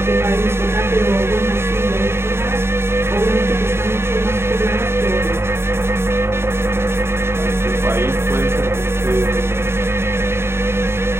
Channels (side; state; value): left; late; 0.12 ms